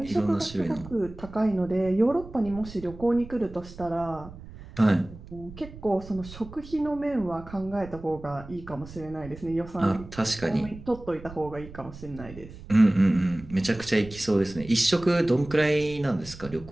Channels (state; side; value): noise; right; rumble, 16 dB below the sound